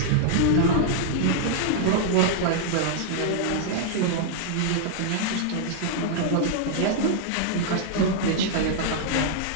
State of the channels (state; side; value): different; both; correlation -0.01